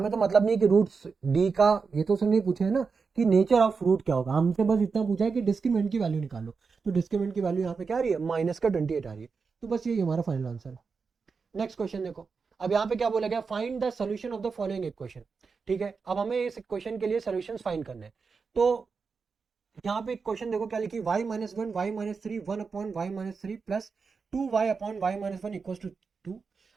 तो मतलब नहीं है कि रूट्स d का, ये तो उसने नहीं पूछा है ना कि नेचर ऑफ रूट क्या होगा, हमसे बस इतना पूछा है कि डिस्क्रिमिनेंट की वैल्यू निकालो, तो डिस्क्रिमिनेंट की वैल्यू यहाँ पे क्या आ रही है माइनस का 28 आ रही है, तो बस ये हमारा फाइनल आंसर है। नेक्स्ट क्वेश्चन देखो, अब यहाँ पे क्या बोला गया find the solution of the following equation, ठीक है। अब हमें इस इक्वेशन के लिए सोल्यूशन फाइंड करने हैं, तो यहाँ पे क्वेश्चन देखो क्या लिखी y -1 y -3 1 upon y -3 plus 2y upon y -1 equal to 2।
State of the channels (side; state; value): left; quieter; 5.0 dB